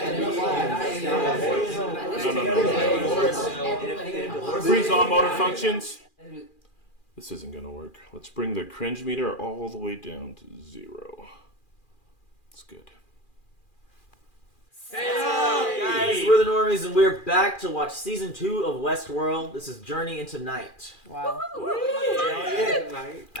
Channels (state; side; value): late; right; 2.4 ms